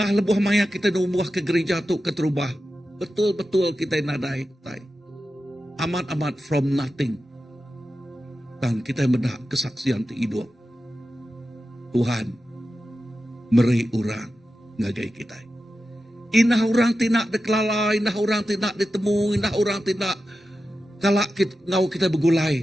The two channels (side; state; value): both; normal; correlation 0.92